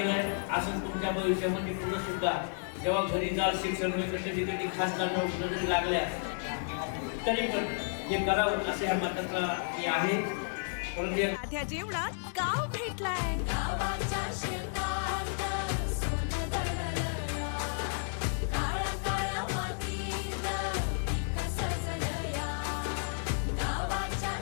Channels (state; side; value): silent; right; digital silence